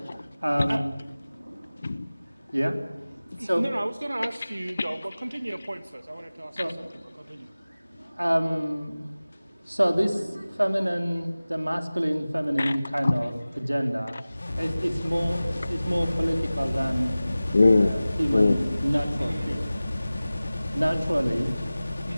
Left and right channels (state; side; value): inverted; both; correlation -0.98